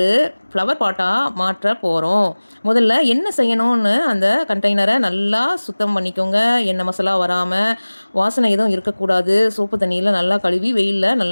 ஃப்ளவர் பாட்டாக மாற்ற போகிறோம். முதல்ல என்ன செய்யணும்னு அந்த கண்டெய்னரை நல்லா சுத்தம் பண்ணிக்கோங்க. எண்ணெய் மசாலா வராமல், வாசனை எதுவும் இருக்கக்கூடாது. சோப்பு தண்ணியில் நல்லா கழுவி வெயிலில்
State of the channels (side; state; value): both; inverted; correlation -1.00